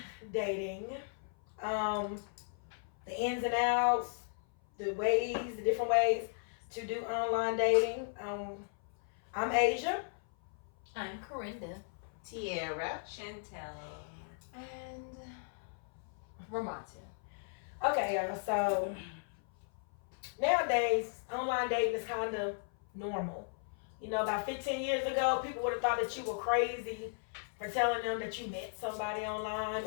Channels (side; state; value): right; silent; 54 dB below the other